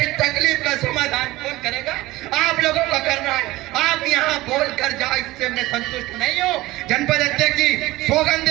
तकलीफ का समाधान कौन करेगा? आप लोगों का करना है। आप यहाँ बोल कर जाओ, इससे मैं संतुष्ट नहीं हूँ। जनपद अध्यक्ष जी सौगंध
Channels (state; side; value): quieter; left; 18.6 dB